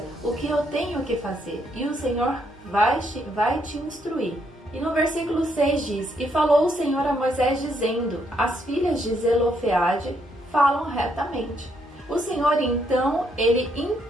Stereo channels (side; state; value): both; normal; correlation 0.74